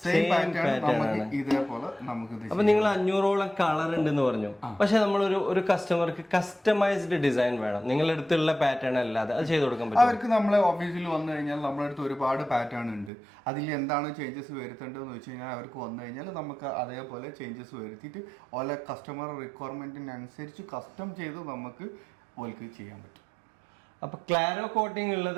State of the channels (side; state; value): left; drops out; at 13.1 s